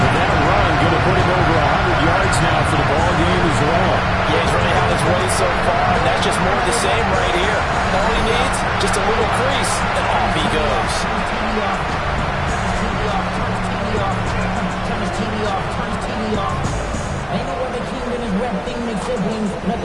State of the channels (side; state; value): both; identical; correlation 1.00